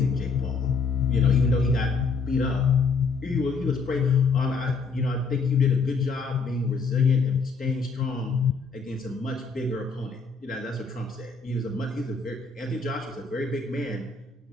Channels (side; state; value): right; quieter; 4.6 dB